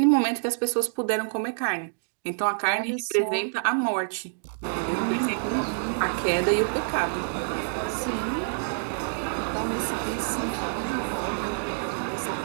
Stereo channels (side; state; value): left; silent; digital silence